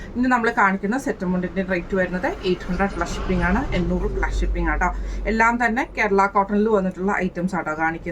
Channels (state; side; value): identical; both; correlation 1.00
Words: ഇന്ന് നമ്മൾ കാണിക്കുന്ന സെറ്റ് മുണ്ടിൻ്റെ റേറ്റ് വരുന്നത് 800 പ്ലസ് ഷിപ്പിംഗ് ആണ്, 800 പ്ലസ് ഷിപ്പിംഗ് ആട്ടോ. എല്ലാം തന്നെ കേരള കോട്ടണിൽ വന്നിട്ടുള്ള ഐറ്റംസ് ആട്ടോ